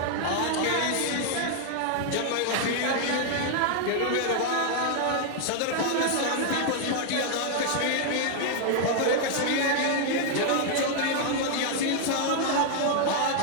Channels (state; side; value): different; both; correlation 0.00